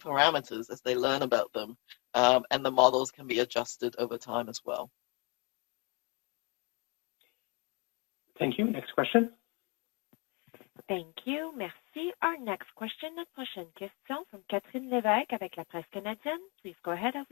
as they learn about them. And the models can be adjusted over time as well. Thank you. Next question. Thank you. Merci. Our next question, notre prochaine question from Catherine Lévesque avec la presse canadienne. Please go ahead, à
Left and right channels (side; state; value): right; quieter; 30.1 dB